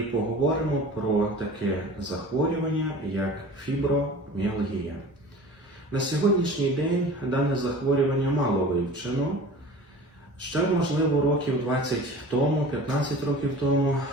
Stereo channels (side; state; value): both; normal; correlation 0.40